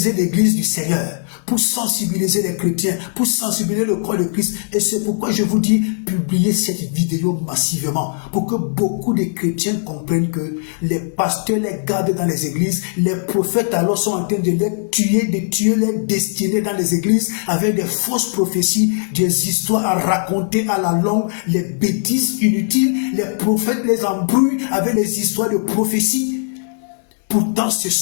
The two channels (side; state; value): right; silent; 67 dB below the other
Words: l'église du Seigneur, pour sensibiliser les chrétiens, pour sensibiliser le corps de Christ. Et c'est pourquoi je vous dis, publiez cette vidéo massivement, pour que beaucoup de chrétiens comprennent que les pasteurs les gardent dans les églises, les prophètes alors sont en train de les tuer les destinées dans les églises, avec des fausses prophéties, des histoires à raconter à la longue, les bêtises inutiles, les prophètes les embrouillent avec les histoires de prophéties. Pourtant, ce